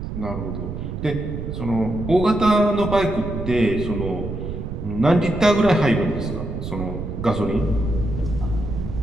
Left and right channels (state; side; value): noise; right; rumble, 6 dB below the sound